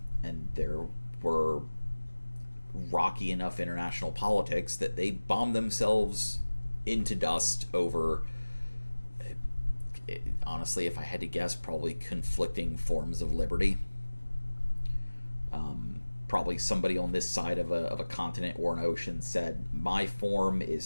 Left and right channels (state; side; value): inverted; both; correlation -1.00